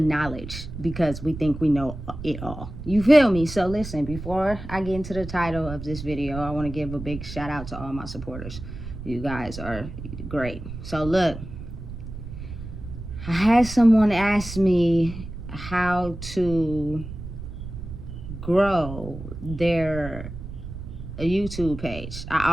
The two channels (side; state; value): right; noise; rumble, 10 dB below the sound